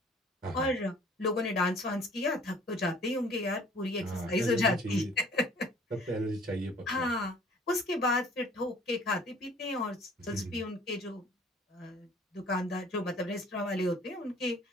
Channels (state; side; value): normal; both; correlation 0.53